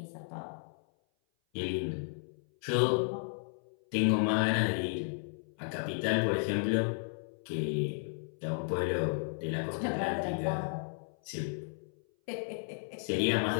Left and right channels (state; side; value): silent; right; 55 dB below the other